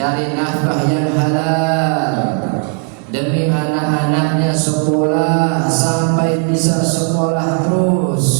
nafkah yang halal demi anak-anaknya sekolah sampai bisa sekolah terus,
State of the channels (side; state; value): left; quieter; 35.1 dB